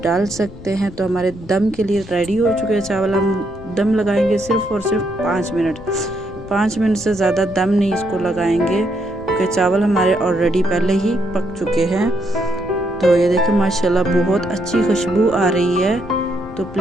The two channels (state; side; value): noise; left; rumble, 17 dB below the sound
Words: डाल सकते हैं। तो हमारे दम के लिए रेडी हो चुके हैं चावल। हम दम लगाएंगे सिर्फ और सिर्फ 5 मिनट। 5 मिनट से ज़्यादा दम नहीं इसको लगाएंगे, क्योंकि चावल हमारे ऑलरेडी पहले ही पक चुके हैं। तो ये देखिए माशाल्लाह बहुत अच्छी खुशबू आ रही है। तो